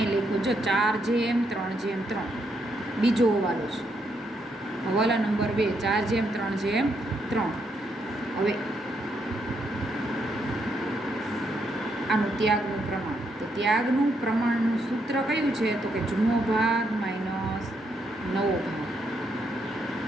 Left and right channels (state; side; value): normal; both; correlation 0.77